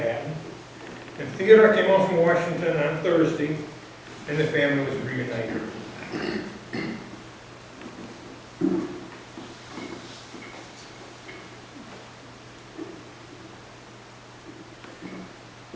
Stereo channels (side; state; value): both; identical; correlation 1.00